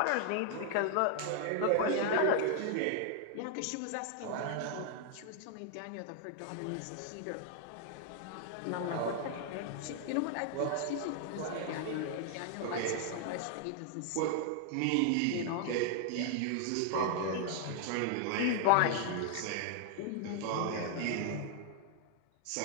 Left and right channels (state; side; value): different; both; correlation -0.01